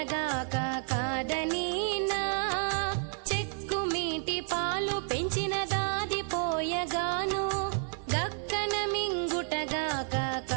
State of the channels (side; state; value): left; silent; 57 dB below the other